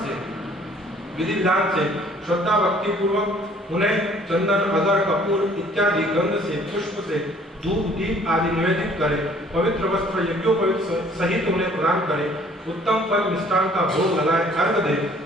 से विधि विधान से श्रद्धा भक्ति पूर्वक उन्हें चंदन, अगर, कपूर इत्यादि गंध से, पुष्प से, धूप, दीप आदि निवेदित करे, पवित्र वस्त्र यज्ञोपवीत सहित उन्हें प्रदान करे, उत्तम फल मिष्टान का भोग लगाए, अर्घ दे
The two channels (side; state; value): both; normal; correlation 0.57